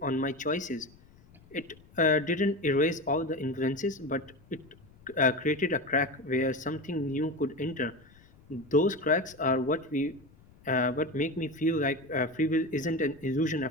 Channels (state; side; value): noise; left; rumble, 26 dB below the sound